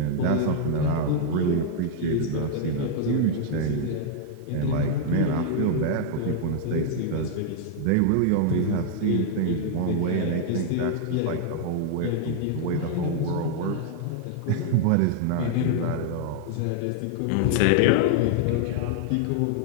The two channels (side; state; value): both; different; correlation 0.00